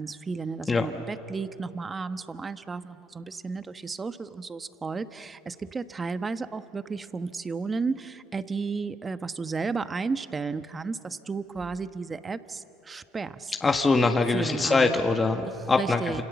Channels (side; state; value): both; normal; correlation 0.83